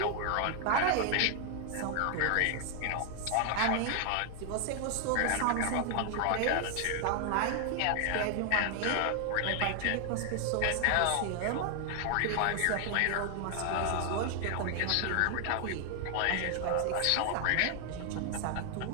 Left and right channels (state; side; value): different; both; correlation 0.00